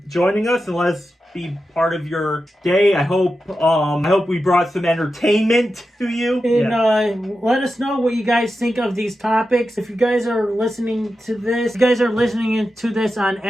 joining us, and let's be part of your day. I hope we brought some entertainment to you. And let us know what you guys think of these topics. If you guys are listening to this, on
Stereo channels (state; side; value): normal; both; correlation 0.91